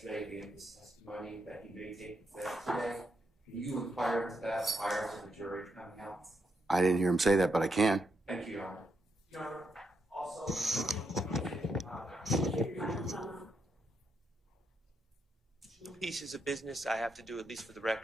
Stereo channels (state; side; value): normal; both; correlation 0.80